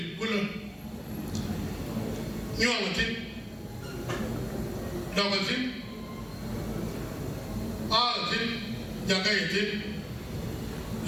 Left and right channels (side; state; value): both; identical; correlation 1.00